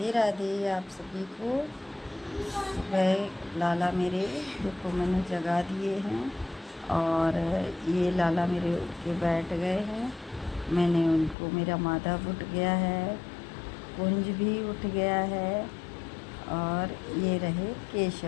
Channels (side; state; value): right; drops out; at 11.4 s